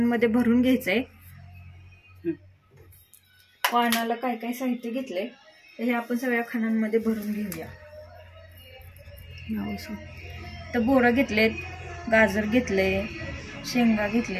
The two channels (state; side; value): identical; both; correlation 1.00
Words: भरून घ्यायचंय. वाणाला काय काय साहित्य घेतलंय तर हे आपण सगळ्या खणांमध्ये भरून घेऊया. तर बोरं घेतलेत, गाजर घेतले, शेंगा